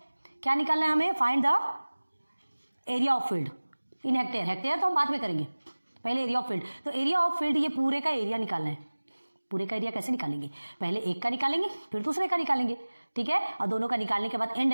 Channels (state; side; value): inverted; both; correlation -1.00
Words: क्या निकालना है हमें? Find the area of field in hectare. Hectare तो हम बाद में करेंगे, पहले एरिया ऑफ फील्ड। तो एरिया ऑफ फील्ड, ये पूरे का एरिया निकालना है। पूरे का एरिया कैसे निकालेंगे, पहले एक का निकालेंगे फिर दूसरे का निकालेंगे, ठीक है। और दोनों का निकालने के बाद एंड